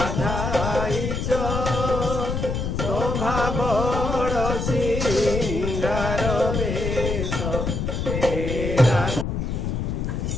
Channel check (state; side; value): noise; left; rumble, 2 dB below the sound